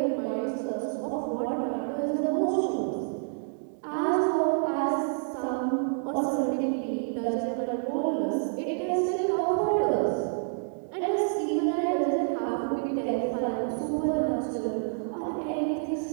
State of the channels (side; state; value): left; silent; digital silence